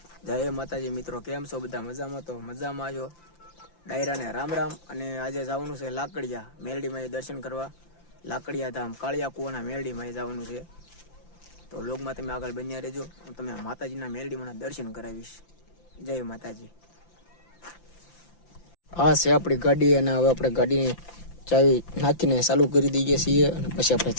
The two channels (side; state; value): right; late; 5.9 ms